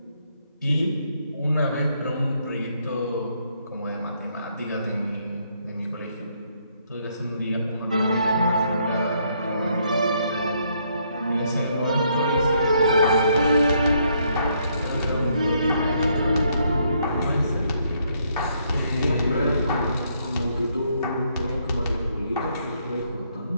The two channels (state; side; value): inverted; both; correlation -0.72